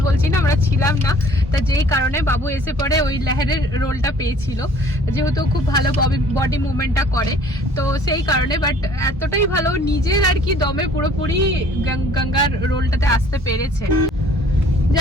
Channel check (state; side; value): normal; both; correlation 0.54